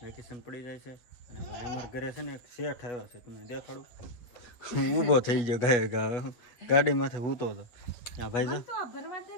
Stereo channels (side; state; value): right; late; 8.3 ms